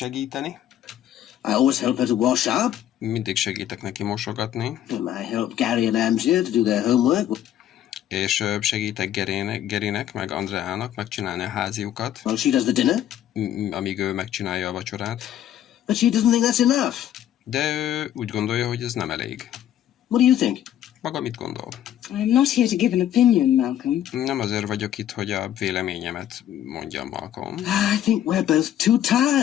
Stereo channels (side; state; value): right; quieter; 11.3 dB